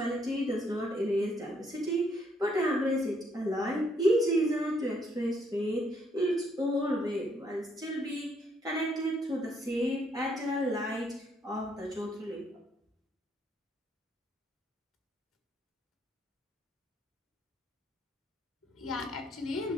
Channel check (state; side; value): normal; both; correlation 0.71